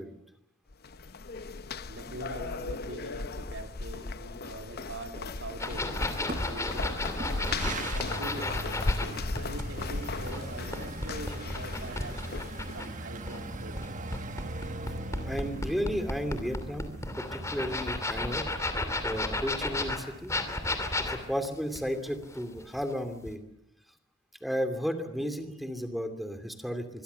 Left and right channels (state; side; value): normal; both; correlation 0.51